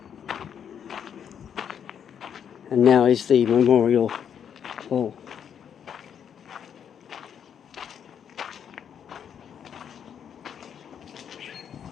And now is the Memorial Hall.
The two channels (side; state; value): right; quieter; 8.3 dB